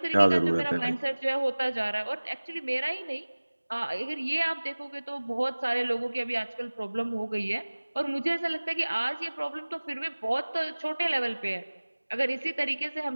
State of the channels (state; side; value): inverted; both; correlation -1.00